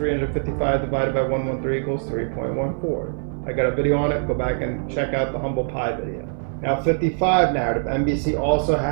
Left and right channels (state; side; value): silent; left; 59 dB below the other